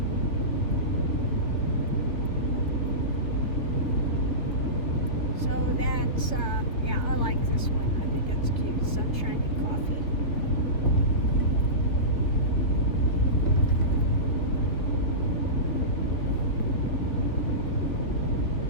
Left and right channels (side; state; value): right; late; 3.5 ms